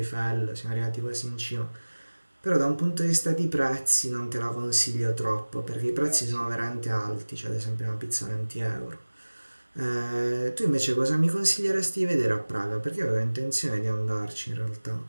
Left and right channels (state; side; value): inverted; both; correlation -1.00